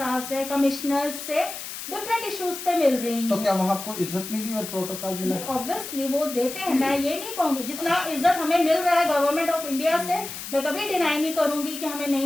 से, कमिश्नर्स से डिफरेंट इश्यूज पे मिल रही हूँ। तो क्या वहाँ आपको इज्जत मिली और प्रोटोकॉल मिला? ऑब्वियसली वो देते हैं, मैं ये नहीं कहूंगी। जितना इज्जत हमें मिल रहा है गवर्नमेंट ऑफ इंडिया से, मैं कभी डिनाई नहीं करूंगी कि हमें नहीं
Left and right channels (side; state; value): left; noise; hiss, 9 dB below the sound